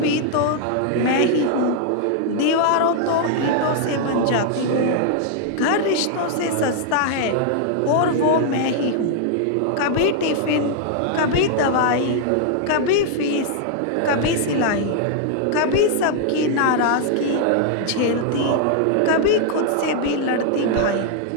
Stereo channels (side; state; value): both; different; correlation 0.00